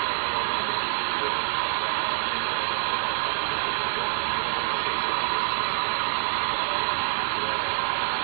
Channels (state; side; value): silent; left; 58 dB below the other